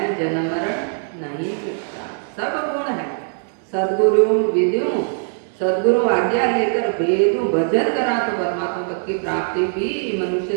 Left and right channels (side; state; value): left; silent; 62 dB below the other